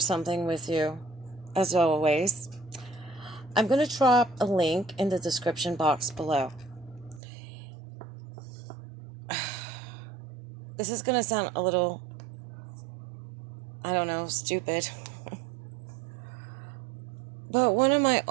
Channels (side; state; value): left; drops out; at 7.2 s